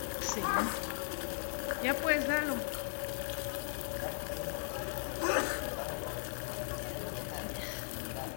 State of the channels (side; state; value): right; silent; digital silence